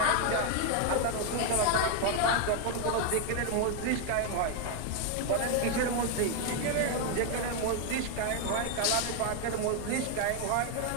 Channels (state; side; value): different; both; correlation 0.01